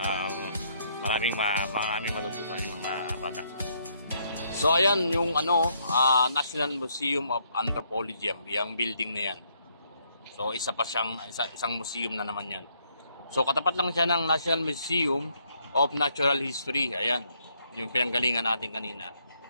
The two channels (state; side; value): inverted; both; correlation -0.71